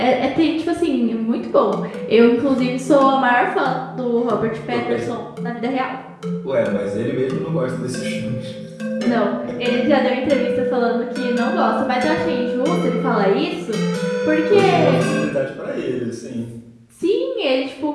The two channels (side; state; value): both; identical; correlation 1.00